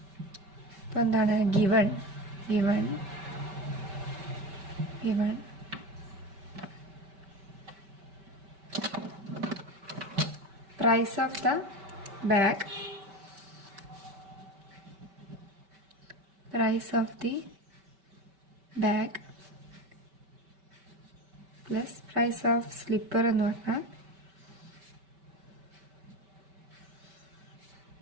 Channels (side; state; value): left; late; 5.2 ms